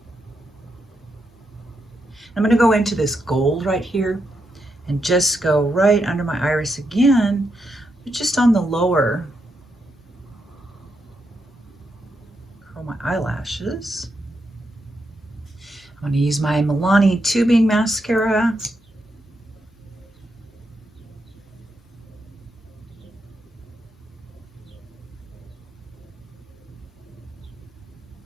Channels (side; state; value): both; normal; correlation 0.83